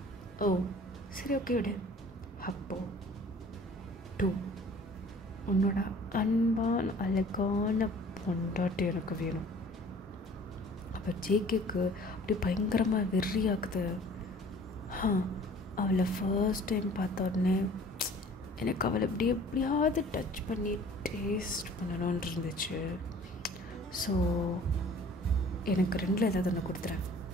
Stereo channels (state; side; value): normal; both; correlation 0.49